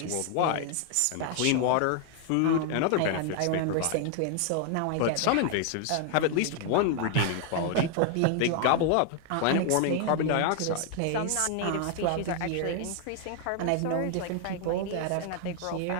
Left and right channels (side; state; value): both; different; correlation 0.00